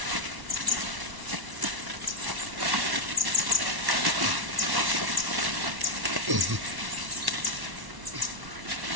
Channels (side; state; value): left; late; 1.1 ms